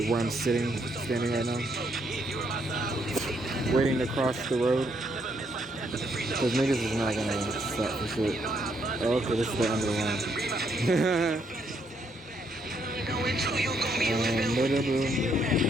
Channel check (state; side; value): normal; both; correlation 0.73